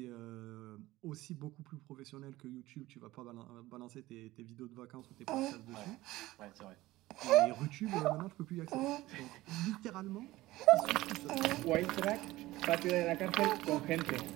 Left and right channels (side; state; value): left; quieter; 17.7 dB